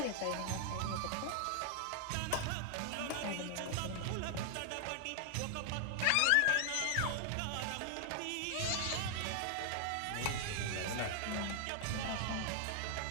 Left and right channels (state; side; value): different; both; correlation 0.00